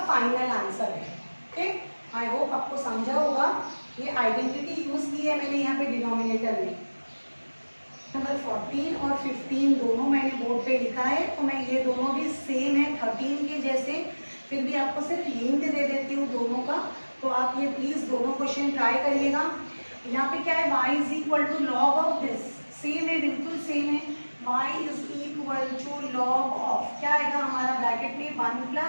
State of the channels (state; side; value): inverted; both; correlation -1.00